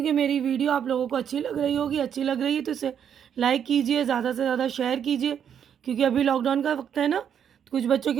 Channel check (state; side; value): quieter; left; 8.5 dB